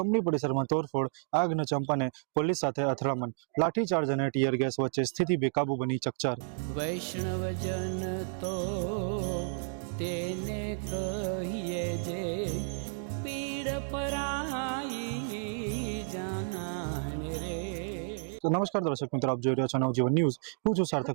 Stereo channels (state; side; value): silent; left; digital silence